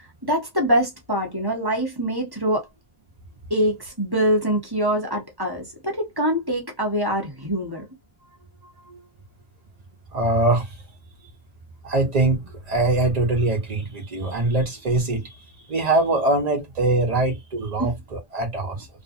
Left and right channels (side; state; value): left; late; 1.1 ms